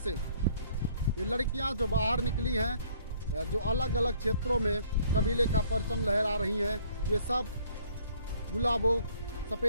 ये लड़कियां जो बाहर निकली हैं, जो अलग अलग क्षेत्रों में कबीले का परचम लहरा रही हैं, ये सब गुलाबो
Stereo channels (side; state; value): both; inverted; correlation -0.60